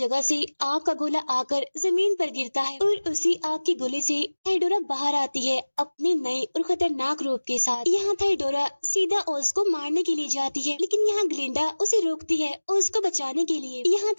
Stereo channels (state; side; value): inverted; both; correlation -1.00